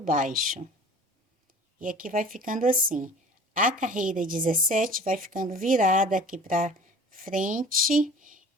E aqui vai ficando assim. A carreira 17 vai ficando virada aqui para frente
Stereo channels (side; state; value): both; normal; correlation 0.44